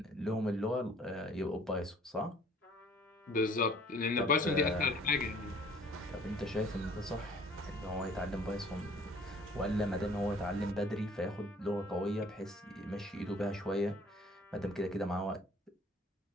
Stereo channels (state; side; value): normal; both; correlation 0.54